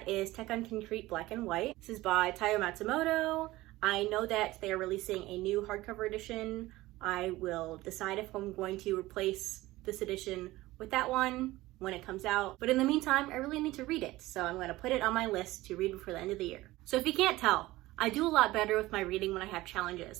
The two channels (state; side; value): quieter; left; 18.2 dB